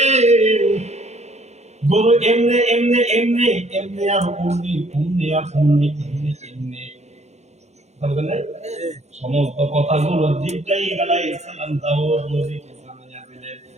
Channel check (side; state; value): left; late; 0.32 ms